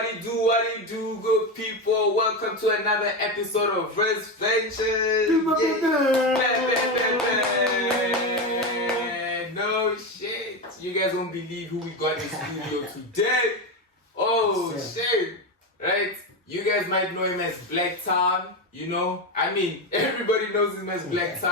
do you do, good people? Welcome to another episode of Verse Ventures. No shit. You guys won't believe who we got in studio today. Oh shit. Right? You guys might know him as Blaqtown, you know? I mean, everybody knows him as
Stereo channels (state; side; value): normal; both; correlation 0.15